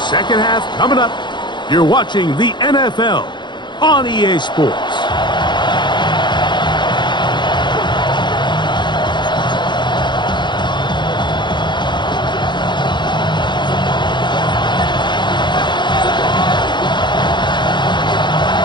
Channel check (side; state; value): right; late; 0.22 ms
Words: Second half coming up. You're watching the NFL on EA Sports.